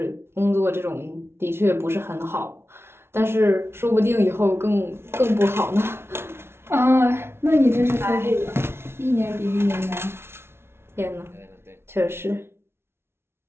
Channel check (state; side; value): late; left; 0.12 ms